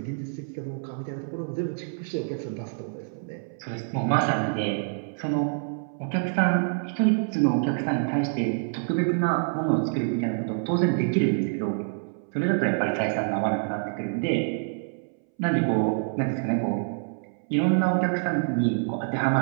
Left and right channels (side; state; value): left; silent; 60 dB below the other